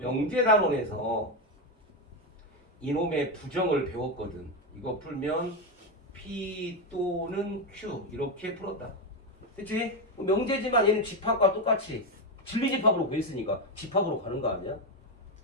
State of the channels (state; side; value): normal; both; correlation 0.09